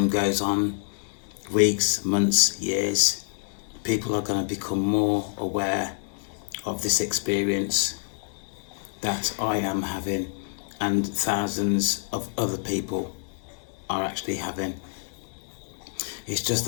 goes on, weeks, months, years, people are going to become more aware of this experience that I am having and thousands of other people are actually having. It's just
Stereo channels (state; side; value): silent; right; 60 dB below the other